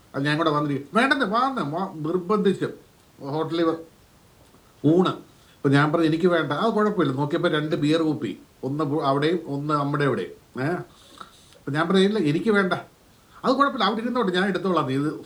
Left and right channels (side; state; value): both; identical; correlation 1.00